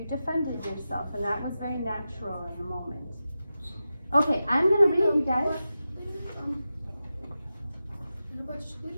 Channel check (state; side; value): inverted; both; correlation -0.92